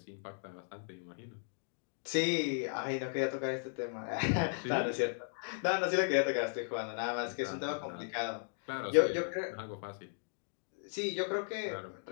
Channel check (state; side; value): silent; right; digital silence